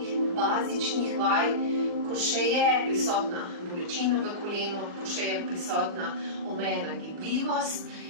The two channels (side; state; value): left; late; 39 ms